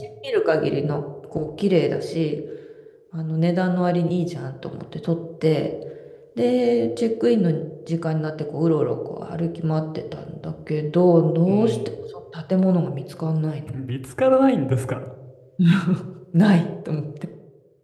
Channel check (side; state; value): both; identical; correlation 1.00